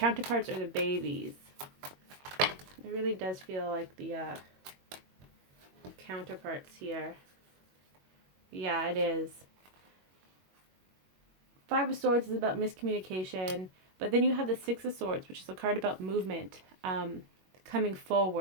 or the babies. It really does feel like the counterparts here. Yeah, it is. Five of Swords is about miscommunication, but then you have the Six of Swords, which is a card about movement, coming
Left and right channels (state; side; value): late; left; 21 ms